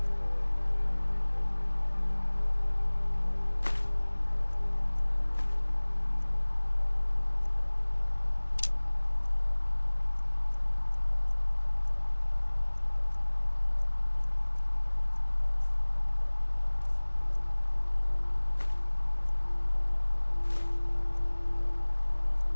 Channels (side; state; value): both; inverted; correlation -1.00